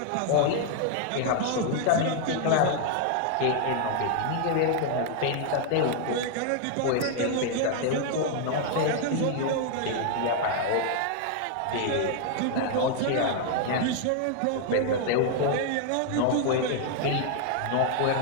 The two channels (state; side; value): different; both; correlation 0.00